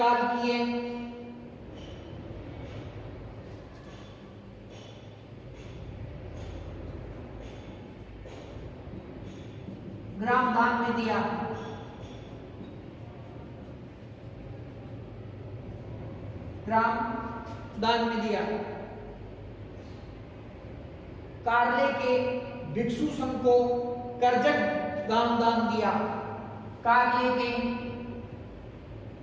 ग्राम दान में दिया। ग्राम दान में दिया। कार्ले के भिक्षु संघ को करजक ग्राम दान दिया। कार्ले के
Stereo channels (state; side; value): identical; both; correlation 1.00